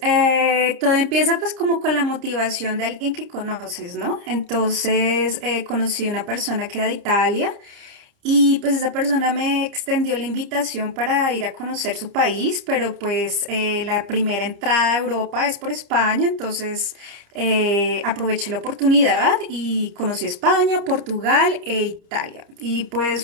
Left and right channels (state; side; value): late; left; 30 ms